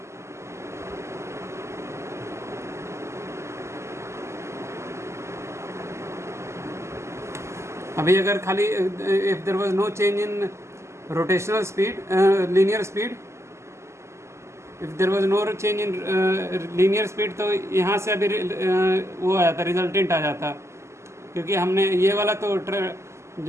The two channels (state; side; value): late; left; 0.13 ms